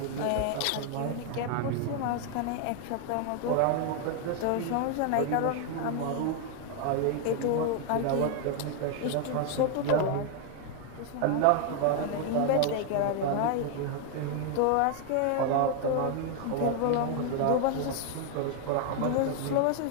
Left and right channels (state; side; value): different; both; correlation 0.00